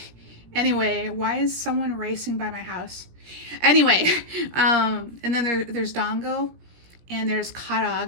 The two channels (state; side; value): late; left; 17 ms